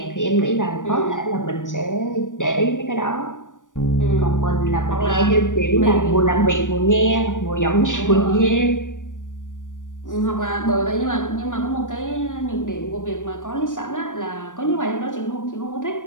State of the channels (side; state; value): right; late; 0.87 ms